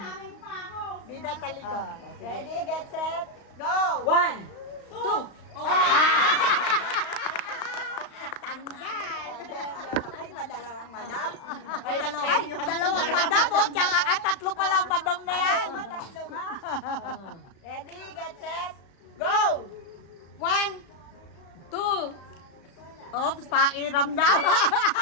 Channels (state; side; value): late; right; 35 ms